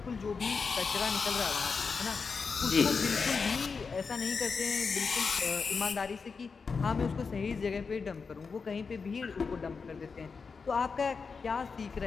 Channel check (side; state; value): right; quieter; 5.1 dB